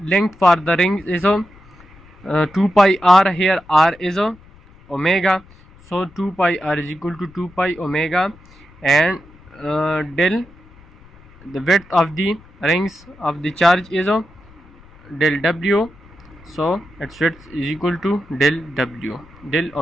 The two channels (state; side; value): noise; left; rumble, 25 dB below the sound